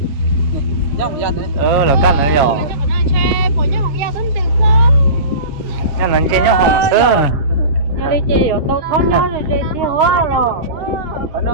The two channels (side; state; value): left; late; 6.8 ms